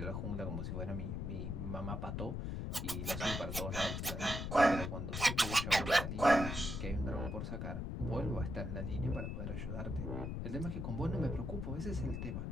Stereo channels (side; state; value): left; noise; rumble, 3 dB below the sound